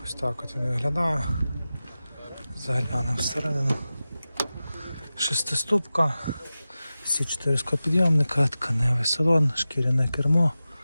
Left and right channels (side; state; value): both; inverted; correlation -0.95